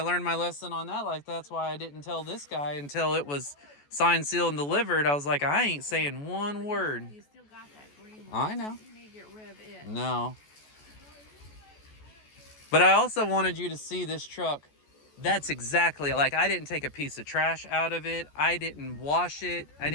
learned my lesson on that. Like, that's why I didn't tell this guy until it was signed, sealed, and delivered. I was like, I ain't saying one word. You still got that green I one. know. You need to get rid of it. No. But I also wanted you to see this truck. That's exactly, like, I didn't take a piece of trash out of it. I didn't wash it.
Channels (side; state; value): right; late; 14 ms